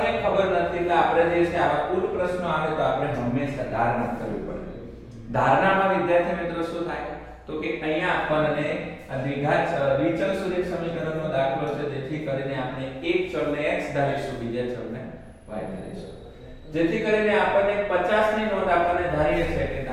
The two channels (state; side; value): identical; both; correlation 1.00